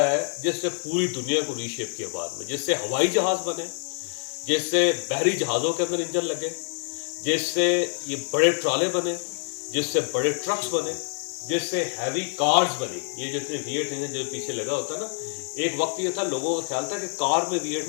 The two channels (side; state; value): right; silent; 59 dB below the other